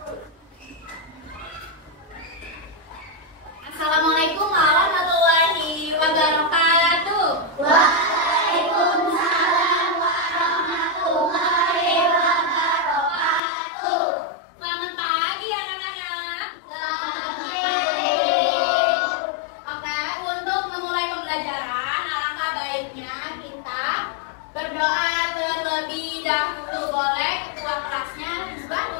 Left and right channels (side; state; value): right; drops out; at 13.4 s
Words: Assalamualaikum warahmatullahi wabarakatuh. Waalaikumsalam warahmatullahi wabarakatuh. Selamat pagi anak-anak. Selamat pagi. Oke, untuk memulai pembelajaran, alangkah baiknya kita berdoa terlebih dahulu. Boleh ketua kelasnya buat